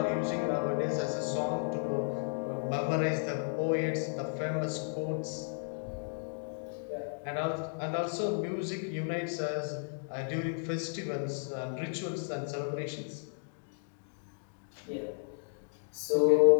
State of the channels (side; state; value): right; silent; digital silence